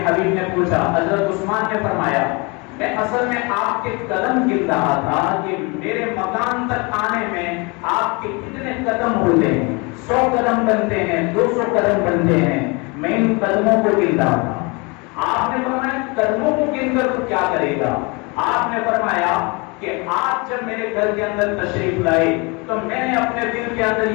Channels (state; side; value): quieter; right; 29.1 dB